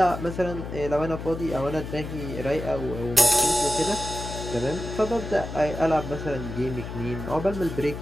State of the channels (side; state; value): left; noise; hum, 8 dB below the sound